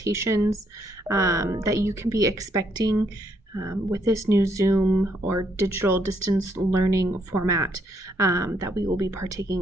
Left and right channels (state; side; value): normal; both; correlation 0.72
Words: that you can be expecting with this new Zoom or digital distance learning format that we will be